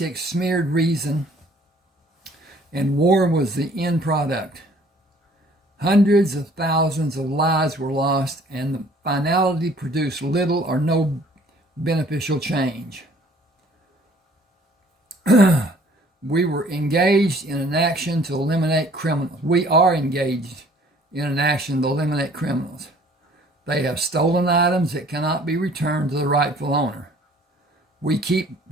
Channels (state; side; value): normal; both; correlation 0.56